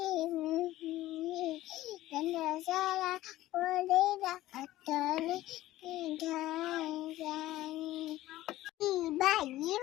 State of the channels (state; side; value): quieter; right; 15.7 dB